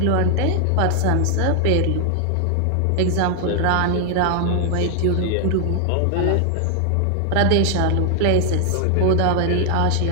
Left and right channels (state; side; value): different; both; correlation 0.00